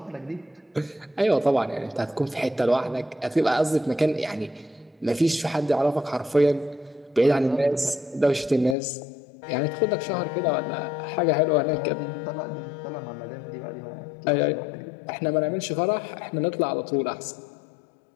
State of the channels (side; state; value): right; drops out; at 8.8 s